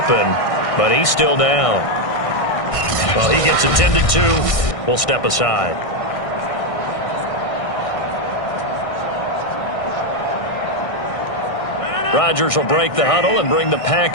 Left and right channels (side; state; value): right; late; 1.6 ms